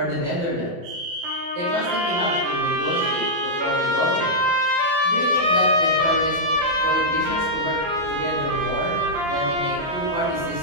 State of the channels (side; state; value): left; late; 29 ms